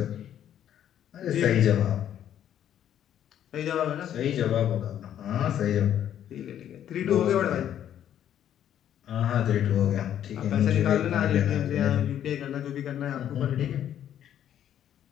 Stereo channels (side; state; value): right; quieter; 10.5 dB